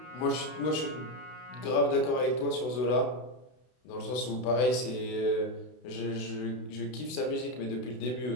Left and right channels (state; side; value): late; right; 32 ms